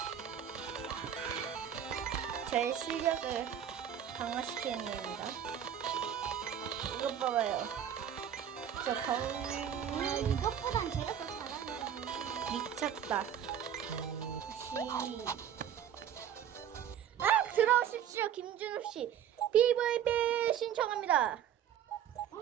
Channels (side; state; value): left; quieter; 9.4 dB